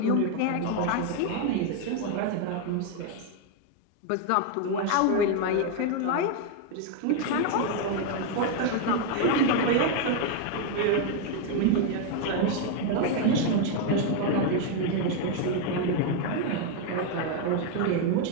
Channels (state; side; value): different; both; correlation 0.00